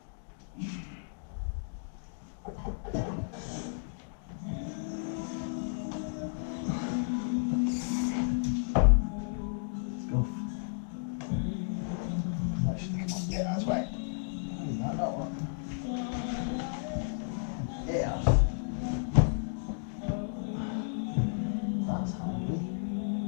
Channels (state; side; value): silent; right; digital silence